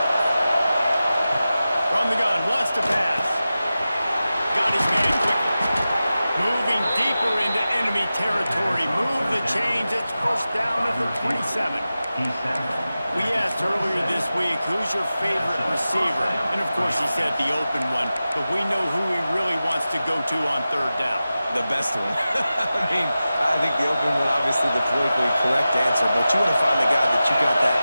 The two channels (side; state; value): both; inverted; correlation -0.94